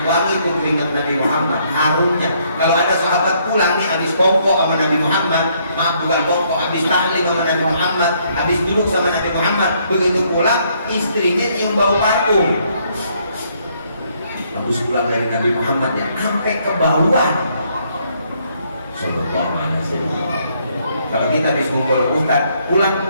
wangi itu keringat Nabi Muhammad, harumnya. Kalau ada sahabat pulang nih habis kongko sama Nabi Muhammad, maaf bukan kongko, habis tahlim sama Nabi Muhammad, habis duduk sama Nabi Muhammad, begitu pulang istrinya nyium bau parfum. Habis pulang dari Nabi Muhammad ya, sampai ke bawah. Sallallahu Alaihi Wasallam. Kalau kita habis ngumpul ustaz, pulang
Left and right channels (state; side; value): inverted; both; correlation -0.69